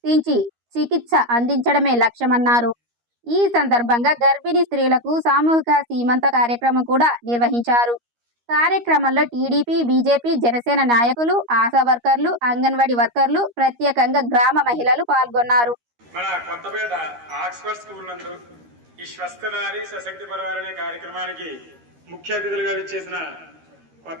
చికిత్స అందించడమే లక్ష్యమన్నారు. ఈ సందర్భంగా గర్భిణీ స్త్రీలకు సామూహిక సీమంత కార్యక్రమం కూడా నిర్వహించారు. కార్యక్రమంలో టీడీపీ, బీజేపీ, జనసేన నాయకులు, ఆశా వర్కర్లు, అంగన్వాడీ వర్కర్లు, ప్రత్యేకంగా గ్రామ మహిళలు పాల్గొన్నారు. మన కొత్తపేట ఆక్స్ఫర్డ్ స్కూల్ నందు ఈ స్వస్థ నారి సశక్తి పరివార్ అనే కార్యక్రమానికి ముఖ్య అతిథులుగా విచ్చేసిన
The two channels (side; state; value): left; late; 13 ms